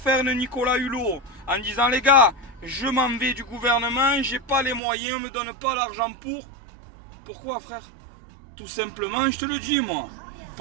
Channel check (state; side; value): drops out; left; at 4.8 s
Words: une Nicolas Hulot en disant les gars, je m'en vais du gouvernement, j'ai pas les moyens, me donne pas l'argent pour. Pourquoi frère? Tout simplement, je te le dis moi,